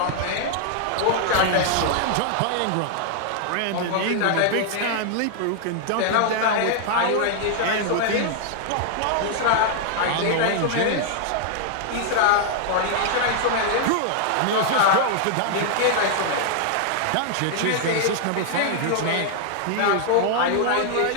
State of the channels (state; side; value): different; both; correlation 0.00